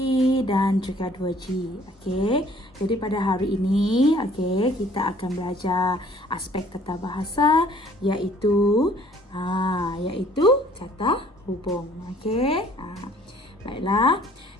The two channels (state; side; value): normal; both; correlation 0.57